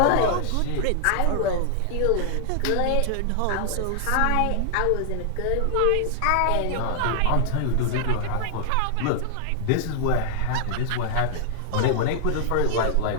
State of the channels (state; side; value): different; both; correlation 0.00